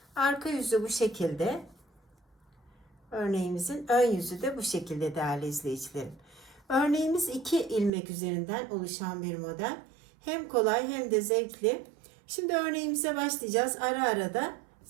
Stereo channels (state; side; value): drops out; left; at 7.9 s